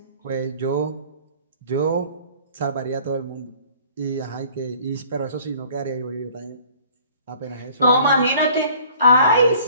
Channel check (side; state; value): both; inverted; correlation -0.52